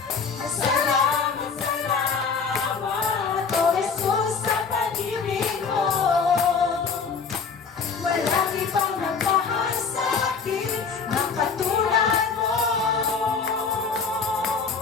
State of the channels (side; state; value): right; quieter; 5.5 dB